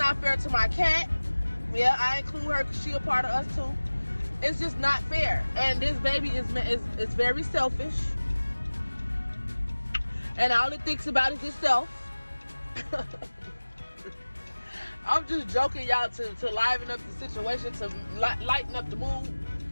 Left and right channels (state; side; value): inverted; both; correlation -1.00